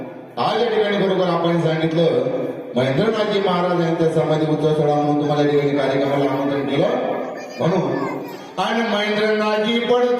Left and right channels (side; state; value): both; identical; correlation 1.00